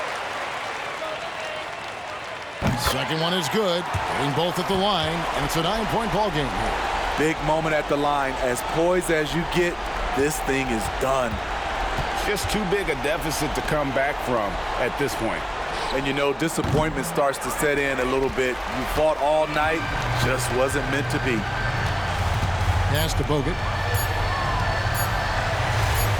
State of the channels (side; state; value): both; identical; correlation 1.00